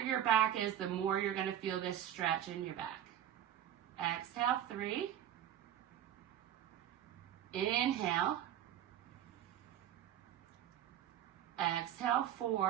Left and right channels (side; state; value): left; quieter; 10.9 dB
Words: back is, the more you're going to feel this stretch in your back. Exhale, 3. Inhale. Exhale,